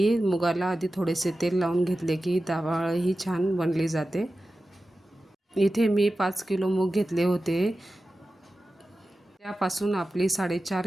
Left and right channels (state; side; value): normal; both; correlation 0.94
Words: मुगाला आधी थोडेसे तेल लावून घेतले की डाळ ही छान बनली जाते। इथे मी 5 किलो मूग घेतले होते, त्यापासून आपली 4.5